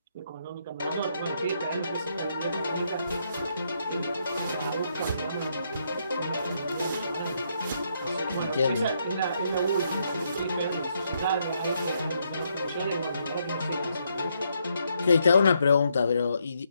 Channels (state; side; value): inverted; both; correlation -0.76